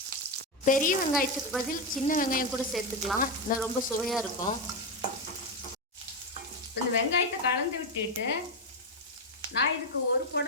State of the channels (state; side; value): normal; both; correlation 0.08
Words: பெரிய வெங்காயத்துக்கு பதில் சின்ன வெங்காயம் கூட சேர்த்துக்கலாம், இன்னும் ரொம்ப சுவையாக இருக்கும். இந்த வெங்காயத்தை கலந்து விட்டுட்டு நான் இதுக்கு ஒரு